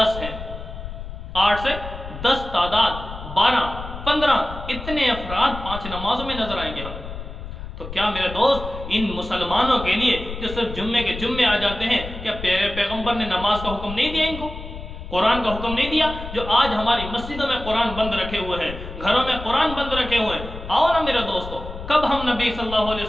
ہیں، 8 سے 10 تعداد، 12 15 اتنے افراد 5 نمازوں میں نظر آئیں گے ہم۔ تو کیا میرے دوست ان مسلمانوں کے لیے جو صرف جمعے کے جمعے آ جاتے ہیں، کیا پیغمبر نے نماز کا حکم نہیں دیا ان کو؟ قرآن کا حکم نہیں دیا؟ جو آج ہماری مسجدوں میں قرآن بند رکھے ہوئے ہیں، گھروں میں قرآن بند رکھے ہوئے ہیں، آؤ نا میرے دوستو، کب ہم نبی صلی اللہ علیہ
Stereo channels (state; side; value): noise; left; rumble, 10 dB below the sound